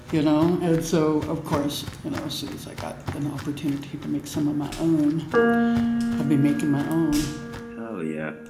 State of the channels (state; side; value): identical; both; correlation 1.00